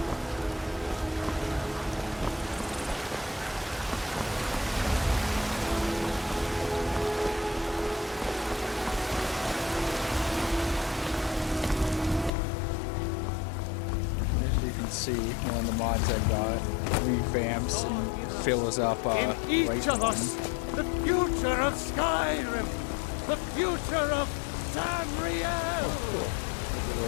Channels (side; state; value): right; drops out; at 12.3 s